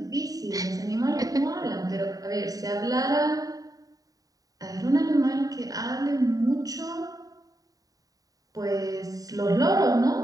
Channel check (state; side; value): late; left; 0.18 ms